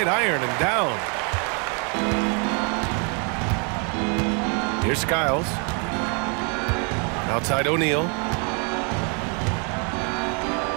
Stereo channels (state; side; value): quieter; left; 36.5 dB